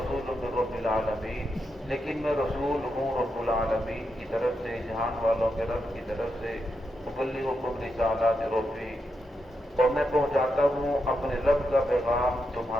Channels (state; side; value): normal; both; correlation 0.84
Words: من رب العالمین، لیکن میں رسول ہوں رب العالمین کی طرف سے، جہان والوں کے رب کی طرف سے، ابلغکم رسالات ربی، اور میں پہنچاتا ہوں اپنے رب کا پیغام